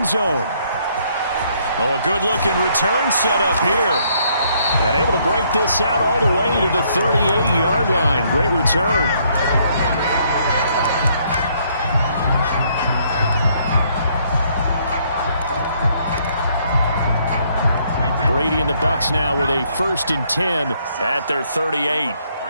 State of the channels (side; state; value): both; inverted; correlation -0.68